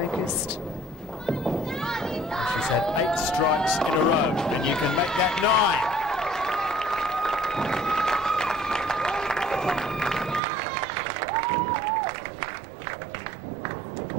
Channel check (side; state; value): left; drops out; at 10.4 s